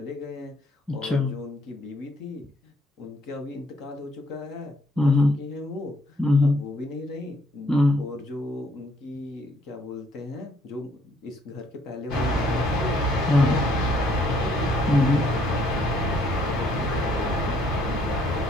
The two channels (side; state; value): both; normal; correlation 0.66